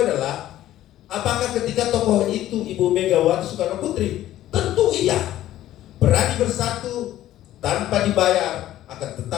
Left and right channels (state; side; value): quieter; right; 13.5 dB